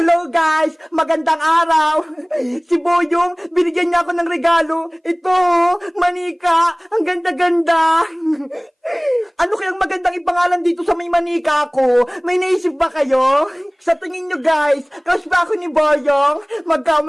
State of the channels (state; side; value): identical; both; correlation 1.00